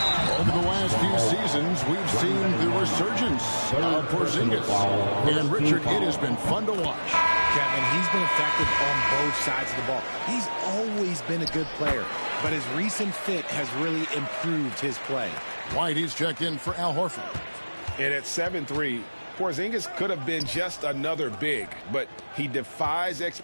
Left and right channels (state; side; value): inverted; both; correlation -1.00